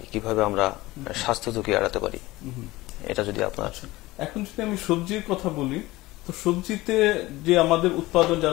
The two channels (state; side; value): quieter; right; 19.2 dB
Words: কিভাবে আমরা স্বাস্থ্য ঝুঁকি এড়াতে পারি, এটা যদি আপনার। আচ্ছা, এখন যদি আমি সবজির কথা বলি তো সবজিতে যে আমাদের উৎপাদন